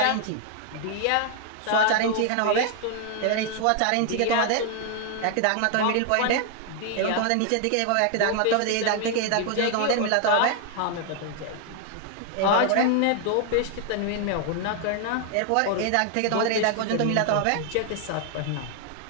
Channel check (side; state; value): both; different; correlation 0.00